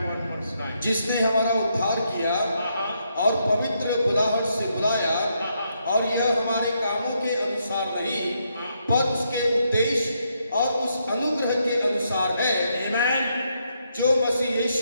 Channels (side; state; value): both; inverted; correlation -0.78